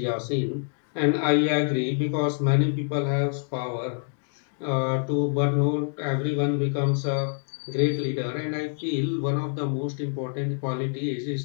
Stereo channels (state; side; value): silent; right; 59 dB below the other